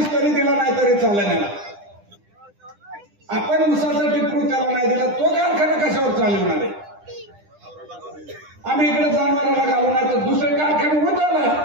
तरी दिला नाही तरी चालेल. आपण ऊसाचा टिपरू त्याला नाही दिला, तो कारखाना कशावर चालवणार आहे? आम्ही इकडे जनावराला घालू नाही तर दुसरे कारखाने होत आला,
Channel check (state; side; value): late; left; 9.9 ms